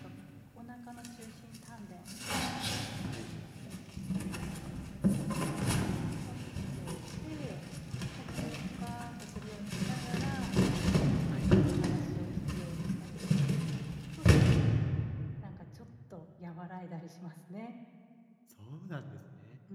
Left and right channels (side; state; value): both; identical; correlation 1.00